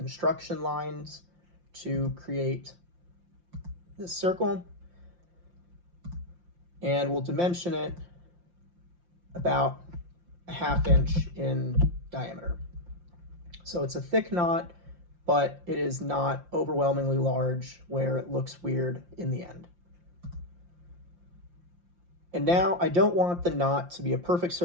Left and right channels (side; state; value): left; late; 5.7 ms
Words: lines to create this circle. And we'll dimension it about 1/2 inch in diameter. So it's a thick knot, but it is not overwhelmingly large where it looks weird in the end. And now I don't want the knot to be a perfect